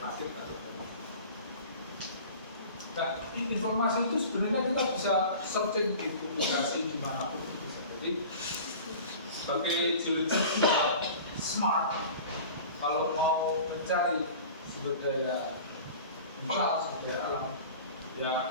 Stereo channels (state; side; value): inverted; both; correlation -0.40